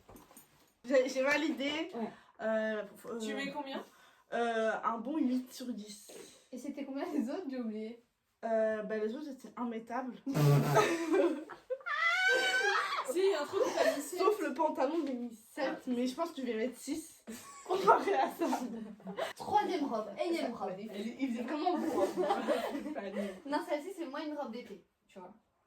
J'ai validé. Ouais. Tu mets combien? Un bon 8 sur 10. Et c'était combien les autres? J'ai oublié. Bah, les autres étaient immettables. Si, un truc que t'as mis 7. Sauf le pantalon, j'ai mis 7. Mais je pense que je vais mettre 6 comparé à ça. Troisième robe, énième robe. Il faisait vraiment beau. Hein. Non, celle-ci, c'est moi une robe d'été, tu vois.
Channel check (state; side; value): identical; both; correlation 1.00